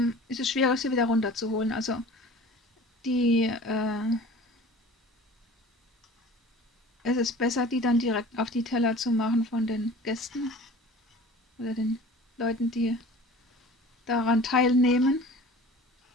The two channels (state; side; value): normal; both; correlation 0.42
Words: ist es schwierer, sie wieder runterzuholen. Also die, es ist besser, die dann direkt auf die Teller zu machen von den Gästen oder den Leuten, die daran teilnehmen,